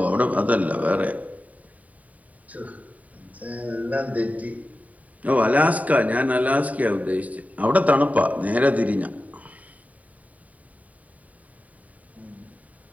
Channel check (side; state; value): left; late; 0.071 ms